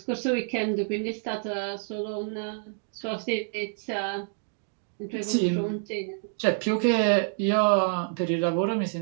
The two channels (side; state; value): left; silent; digital silence